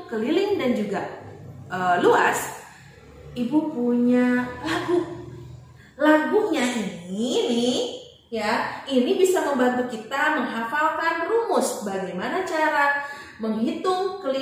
keliling dan juga luas, Ibu punya lagu. Lagunya ini ya, ini bisa membantu kita menghafalkan rumus bagaimana cara menghitung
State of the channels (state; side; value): identical; both; correlation 1.00